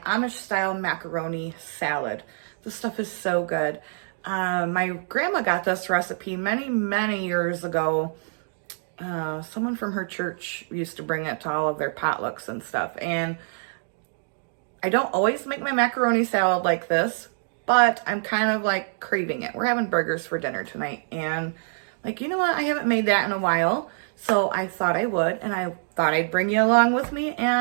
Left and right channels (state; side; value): silent; left; digital silence